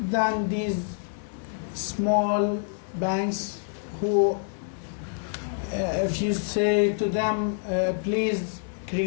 these small banks who, if you say to them, please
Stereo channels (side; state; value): right; silent; 60 dB below the other